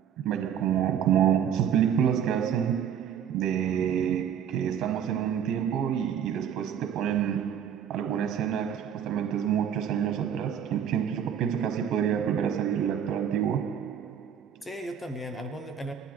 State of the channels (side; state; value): left; quieter; 8.7 dB